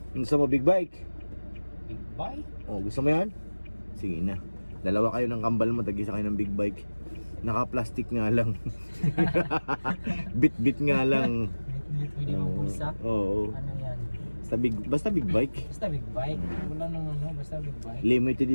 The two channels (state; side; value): inverted; both; correlation -1.00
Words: Gusto mo big bike? Big bike? Gusto mo yan? Sige na. Dalawa kayo ng kambal mo, tag-isa kayo ng big bike. Naka-plastic nga lang. Bit-bit nga lang. Bit-bit, pwede mong pulsa? Oo. Ano yan? Basta big bike. Basta big bike. Wala nang basta big bike. Limited